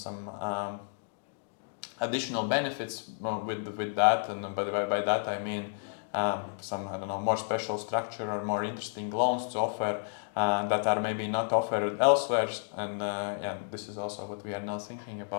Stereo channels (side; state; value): right; silent; digital silence